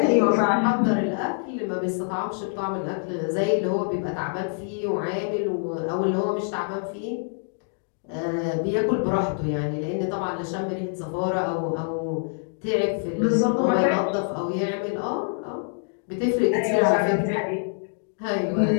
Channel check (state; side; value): silent; right; digital silence